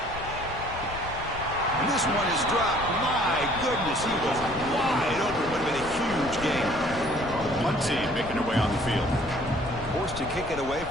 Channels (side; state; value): left; noise; rumble, 12 dB below the sound